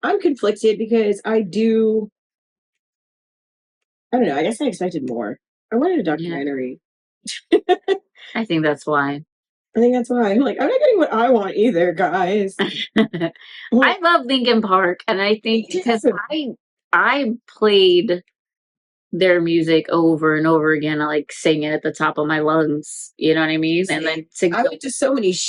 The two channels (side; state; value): both; identical; correlation 1.00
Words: I'm conflicted because I don't know. I guess I expected more. I wanted a documentary. Yeah. I think that's why. I'm not getting what I want either, guys. I love Linkin Park, and I think because I played their music over and over again. I like sing it at the top of my lungs. You know what I mean? And then I went to so many